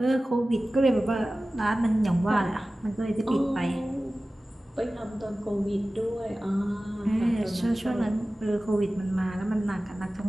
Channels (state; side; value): normal; both; correlation 0.96